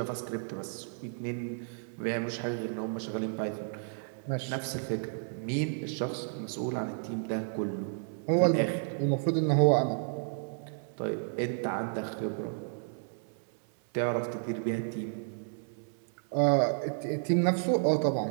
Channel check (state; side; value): silent; left; digital silence